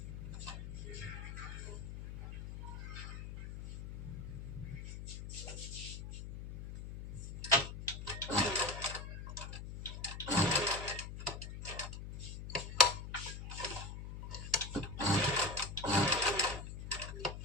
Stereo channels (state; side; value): noise; left; hum, 8 dB below the sound